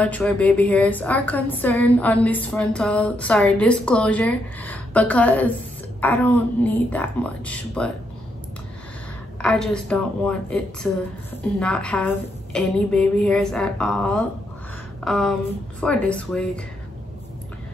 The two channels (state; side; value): normal; both; correlation 0.78